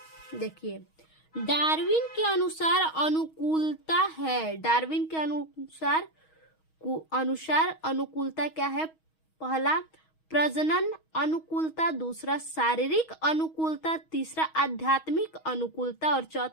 देखिए, डार्विन के अनुसार अनुकूलता है। डार्विन के अनुसार अनुकूलता क्या है, पहला प्रजनन अनुकूलता, दूसरा शारीरिक अनुकूलता, तीसरा आध्यात्मिक अनुकूलता और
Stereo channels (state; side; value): late; right; 6.3 ms